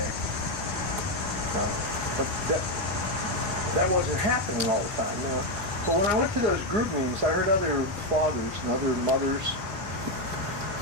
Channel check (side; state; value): left; late; 4.8 ms